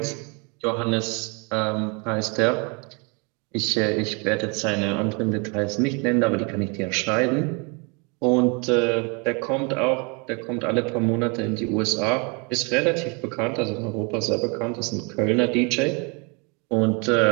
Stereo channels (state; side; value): quieter; left; 32.1 dB